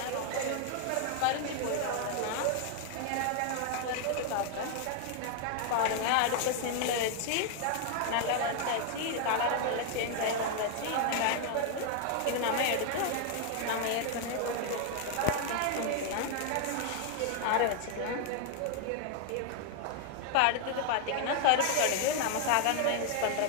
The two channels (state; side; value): different; both; correlation 0.00